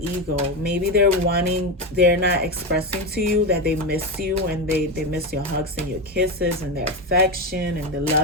Maybe they're not expressing to you that they miss you, and they miss your hugs and your kisses and their affection and the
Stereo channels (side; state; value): both; normal; correlation 0.14